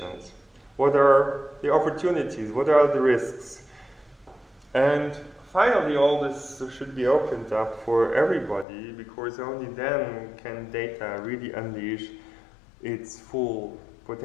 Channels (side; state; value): right; drops out; at 8.7 s